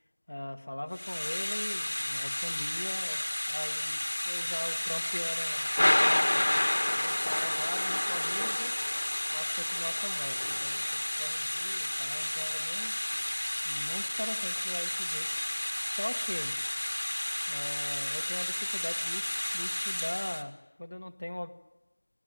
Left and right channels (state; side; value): inverted; both; correlation -1.00